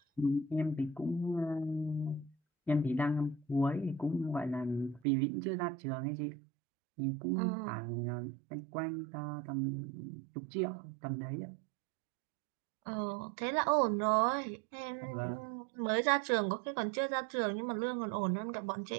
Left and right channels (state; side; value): drops out; left; at 5.0 s